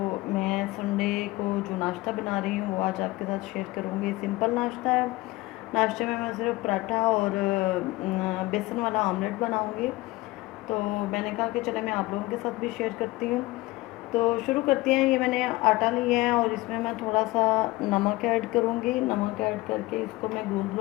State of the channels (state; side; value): quieter; right; 20.4 dB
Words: मैं संडे को जो नाश्ता बना रही हूँ वो आज आपके साथ शेयर करूँगी। सिंपल नाश्ता है। नाश्ते में मैं सिर्फ पराठा और बेसन वाला ऑमलेट बनाऊँगी। तो मैंने कहा कि चले मैं आप लोगों के साथ भी शेयर करती हूँ। तो शुरू करते हैं। ये मैंने आटा लिया है और इसमें मैं थोड़ा सा नमक ऐड करूँगी। नमक ऐड करके इसको मैं गूँध